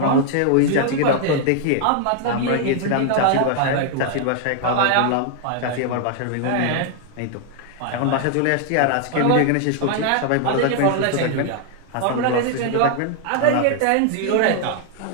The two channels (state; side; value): different; both; correlation 0.00